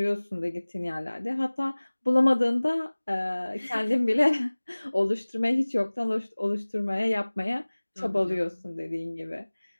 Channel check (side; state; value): both; inverted; correlation -1.00